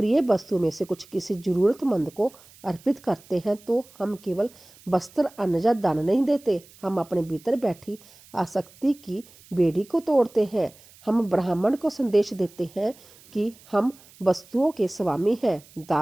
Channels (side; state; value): right; noise; hiss, 25 dB below the sound